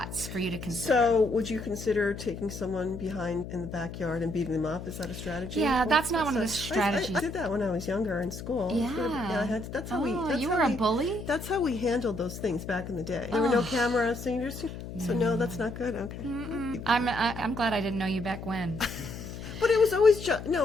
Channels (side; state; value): left; noise; hum, 10 dB below the sound